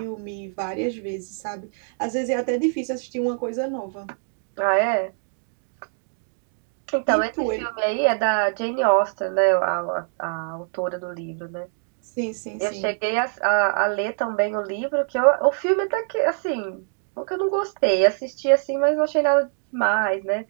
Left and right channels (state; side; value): silent; left; digital silence